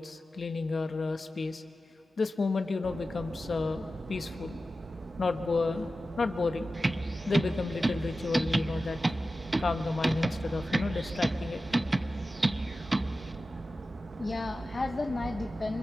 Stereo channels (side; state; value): both; normal; correlation 0.93